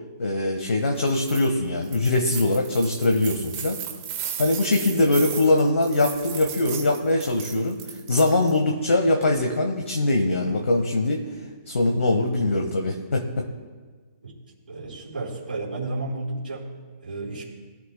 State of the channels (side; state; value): both; inverted; correlation -0.75